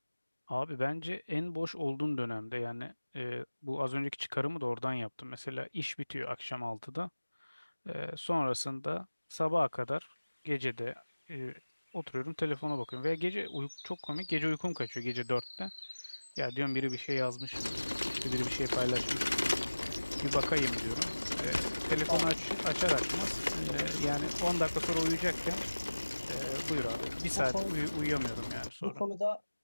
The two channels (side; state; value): both; inverted; correlation -1.00